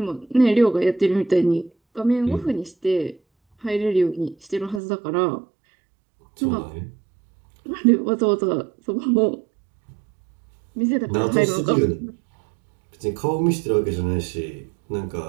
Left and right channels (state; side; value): drops out; left; at 4.8 s